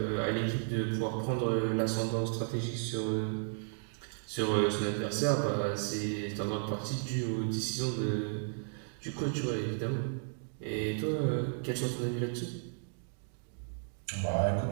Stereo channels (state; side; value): silent; left; digital silence